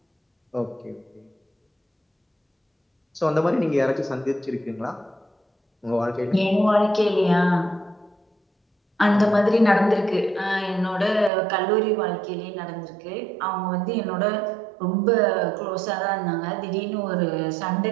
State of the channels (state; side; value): drops out; left; at 11.3 s